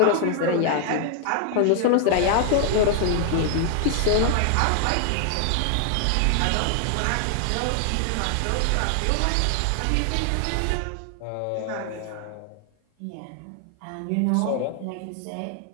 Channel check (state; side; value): different; both; correlation 0.00